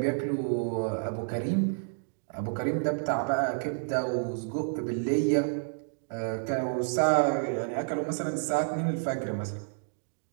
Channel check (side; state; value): left; silent; digital silence